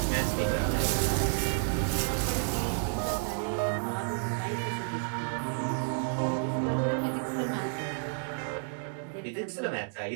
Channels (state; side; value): silent; left; digital silence